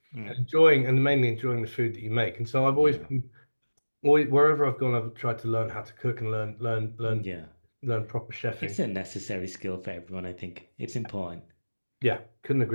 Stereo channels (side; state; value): both; inverted; correlation -1.00